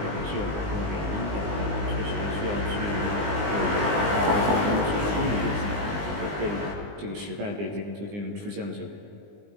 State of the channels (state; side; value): late; left; 20 ms